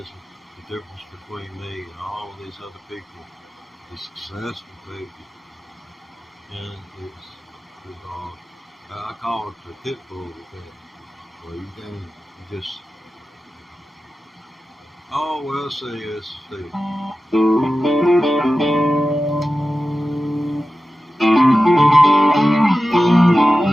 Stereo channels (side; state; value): both; normal; correlation 0.94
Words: the difference between me and all of these other people, these successful people. And I call it the pit bull effect, where you just, oh, well, see.